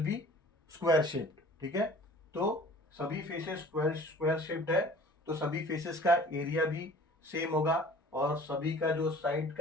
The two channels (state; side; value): normal; both; correlation 0.47